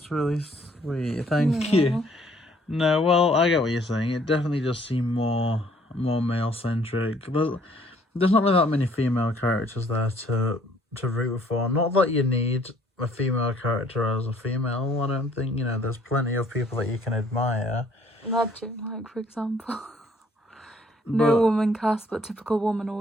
really sweet. Thank you. No, well, I get what you're saying. It definitely does seem more male centric. There's not really that many female characters there to root for. Not that you need a female character as a female. I don't think, there's plenty of people that you can admire. Logic, like, for example. No woman cast, but typical woman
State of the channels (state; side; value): normal; both; correlation 0.61